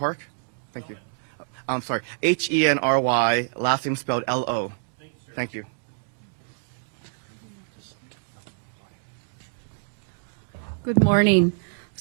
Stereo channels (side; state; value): left; silent; digital silence